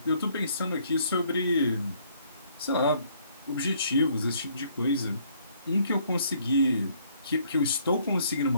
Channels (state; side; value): inverted; both; correlation -0.64